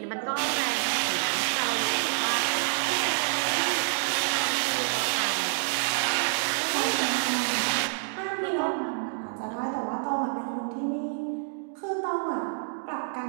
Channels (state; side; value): silent; left; digital silence